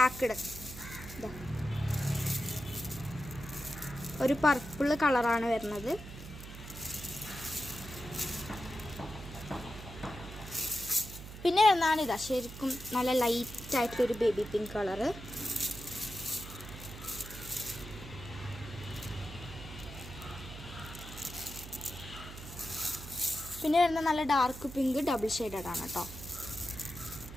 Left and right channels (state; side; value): noise; right; hum, 12 dB below the sound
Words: ഒരു പർപ്പിൾ കളറാണ് വരുന്നത്. പിന്നെ വരുന്നതാണ് ഇതാ ശരിക്കും നല്ല ലൈറ്റായിട്ടുള്ളൊരു ബേബി പിങ്ക് കളറ്. പിന്നെ വരുന്ന നല്ല ഡാർക്ക് പിങ്ക് ഡബിൾ ഷെയ്ഡഡ് ആണ് കേട്ടോ.